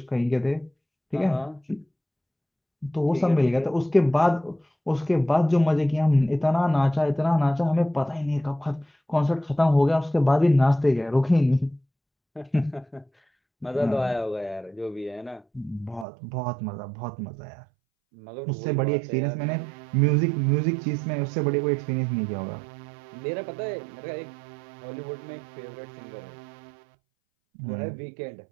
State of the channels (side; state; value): left; drops out; at 16.1 s